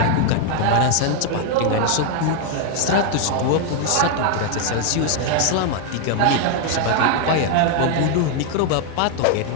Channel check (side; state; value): both; different; correlation 0.00